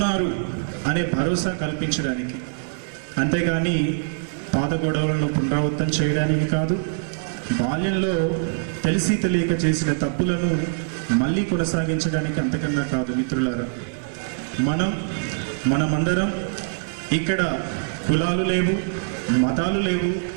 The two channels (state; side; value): silent; left; digital silence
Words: అనే భరోసా కల్పించడానికి, అంతేగాని పాత గొడవలను పునరావృతం చేయడానికి కాదు, బాల్యంలో తెలిసి తెలియక చేసిన తప్పులను మళ్ళీ కొనసాగించడానికి అంతకన్నా కాదు. మిత్రులారా, మనమందరం ఇక్కడ కులాలు లేవు, మతాలు లేవు,